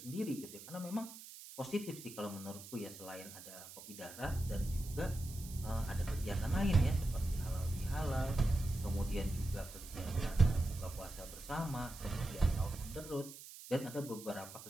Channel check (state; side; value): noise; right; hiss, 14 dB below the sound